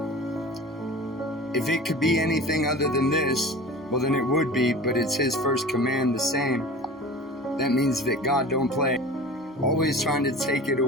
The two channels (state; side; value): normal; both; correlation 0.38